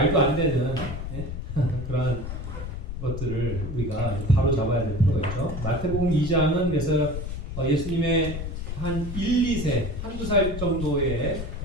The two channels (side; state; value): left; noise; rumble, 6 dB below the sound